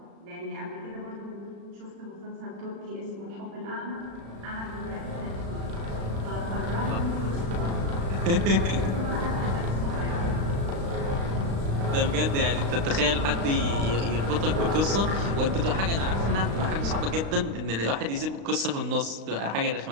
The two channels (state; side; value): late; left; 36 ms